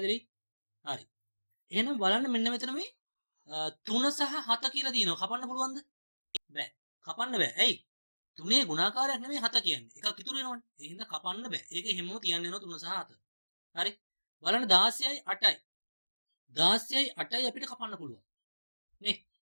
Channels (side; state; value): both; inverted; correlation -1.00